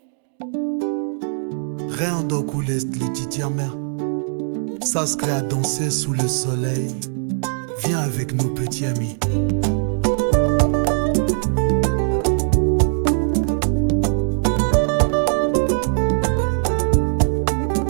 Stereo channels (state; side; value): silent; left; digital silence